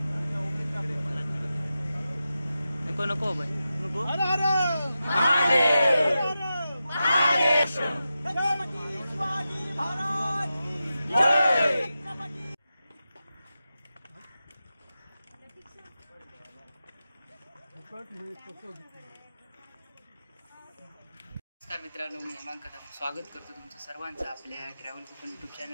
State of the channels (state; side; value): inverted; both; correlation -0.91